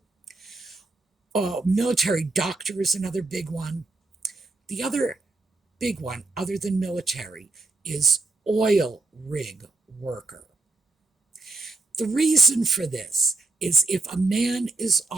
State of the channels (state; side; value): quieter; left; 3.4 dB